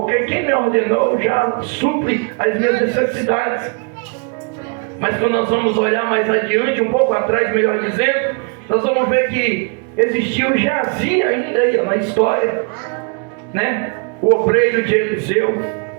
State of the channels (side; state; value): left; quieter; 36.0 dB